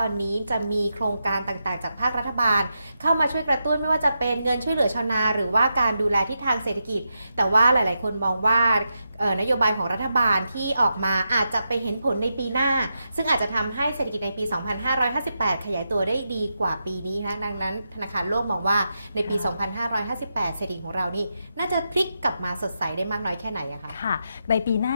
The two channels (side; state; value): both; inverted; correlation -0.86